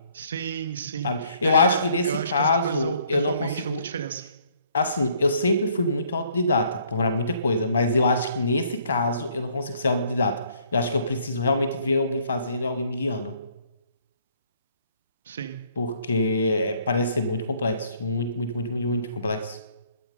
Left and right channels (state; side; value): inverted; both; correlation -0.63